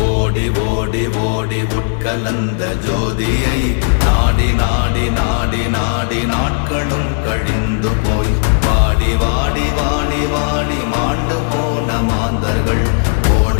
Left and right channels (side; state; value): right; silent; digital silence